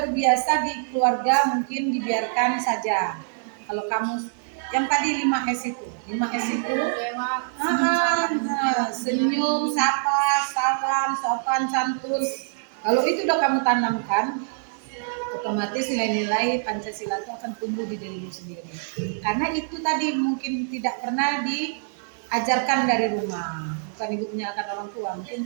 di keluarga mungkin dibiarkan saja. Kalau kamu yang tadi 5S itu, 5S itu senyum, sapa, salam, sopan, santun. Kalau itu udah kamu tanamkan, otomatis nilai-nilai Pancasila itu akan tumbuh di dirimu sendiri. Karena itu tadi mungkin tidak pernah diajarkan dari rumah. Bukan ibu menyalahkan orang tua, mungkin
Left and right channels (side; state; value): left; silent; digital silence